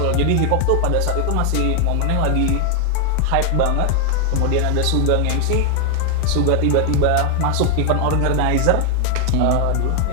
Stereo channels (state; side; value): different; both; correlation 0.00